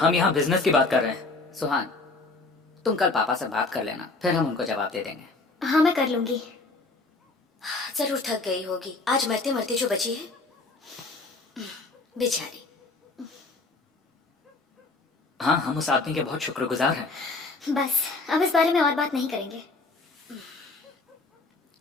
यहाँ बिजनेस की बात कर रहे हैं। सुहान, तुम कल पापा से बात कर लेना, फिर हम उनको जवाब दे देंगे। हाँ, मैं कर लूंगी। जरूर थक गई होगी, आज मरते मरते जो बची है बेचारी। हाँ, हम उस आदमी के बहुत शुक्रगुजार हैं। बस अब इस बारे में और बात नहीं करेंगे।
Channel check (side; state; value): right; quieter; 3.5 dB